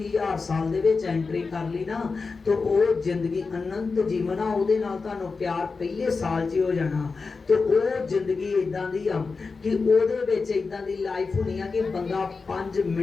1000 साल दे विच एंट्री कर ली ना तो वो जिंदगी अनंत जीवन आ। उहदे नाल तुहानूं प्यार पहले साल 'च हो जाना। तो वो जिंदगी इदां दी आ कि उहदे विच इदां दी लाइफ होनी आ कि बंदा 5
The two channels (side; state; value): right; quieter; 4.4 dB